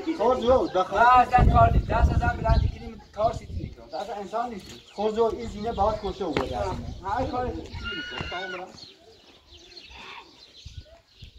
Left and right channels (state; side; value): identical; both; correlation 1.00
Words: خوزو دخل اصلا کار نیست دست ازم بلندی کنیم کار سیتی نیکنم دست انسان نیستی خوزو این زینه باید کشه او بوده هر کاری سیتی نیکنم تمام برم